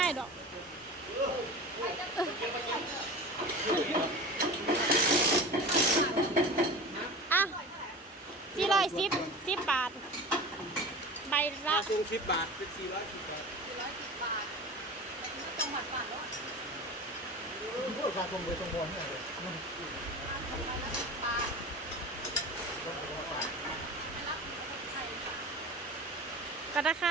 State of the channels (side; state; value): both; normal; correlation 0.33